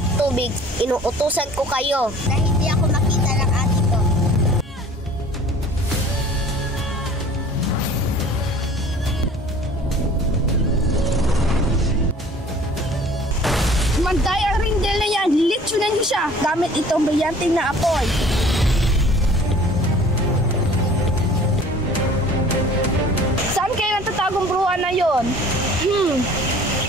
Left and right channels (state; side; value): normal; both; correlation 0.49